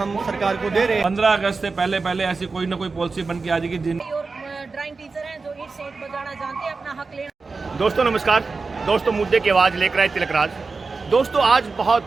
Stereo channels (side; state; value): left; quieter; 4.2 dB